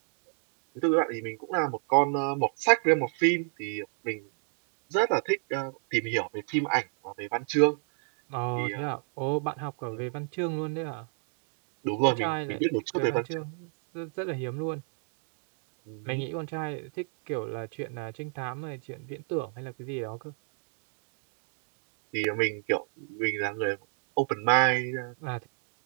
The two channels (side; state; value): left; silent; 57 dB below the other